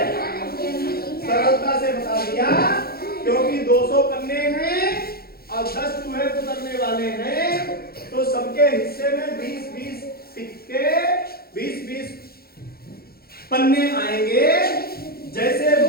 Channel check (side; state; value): right; late; 0.44 ms